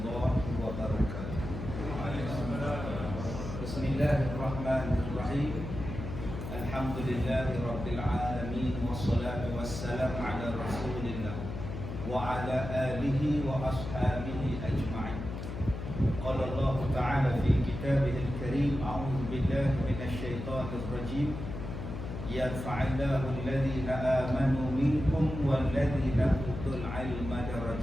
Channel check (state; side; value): noise; left; hum, 7 dB below the sound